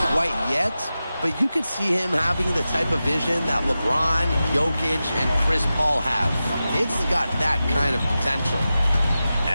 quite yet, but you could see him having the type of vision that LeBron, Jokic, and Chris Paul have. It's got that kind of potential.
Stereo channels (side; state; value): both; inverted; correlation -0.93